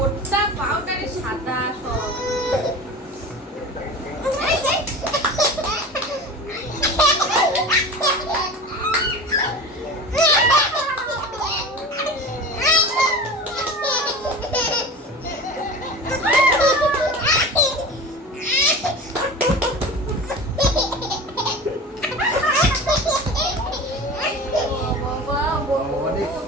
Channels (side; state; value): both; normal; correlation 0.33